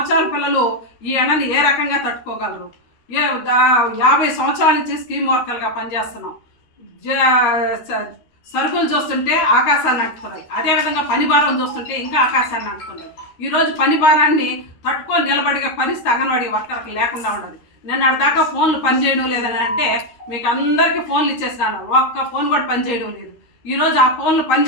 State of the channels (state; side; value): late; right; 13 ms